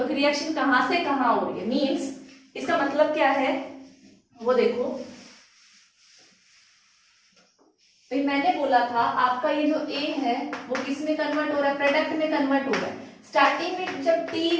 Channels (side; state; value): both; identical; correlation 1.00